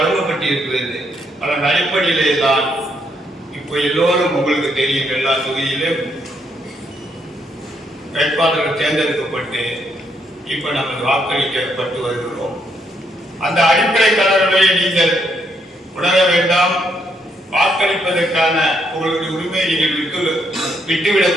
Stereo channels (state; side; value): normal; both; correlation 0.75